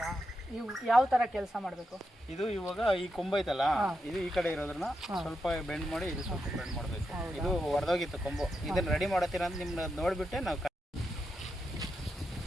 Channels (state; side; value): normal; both; correlation 0.86